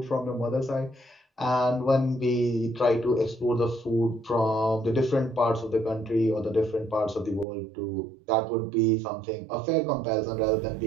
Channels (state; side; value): drops out; left; at 7.5 s